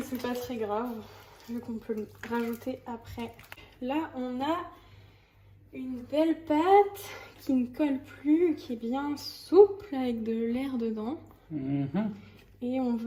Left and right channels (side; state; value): both; identical; correlation 1.00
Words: c'est pas très grave, vu qu'on peut le rajouter après. Là, on a une belle pâte qui ne colle plus, qui est bien souple, avec de l'air dedans. Et on